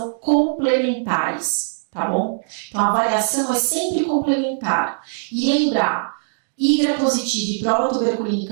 complementares, tá bom? Então a avaliação é sempre complementar. E lembrar, IGRA positivo e prova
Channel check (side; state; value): left; silent; digital silence